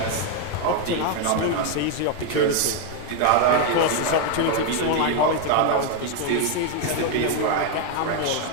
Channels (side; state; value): both; different; correlation 0.01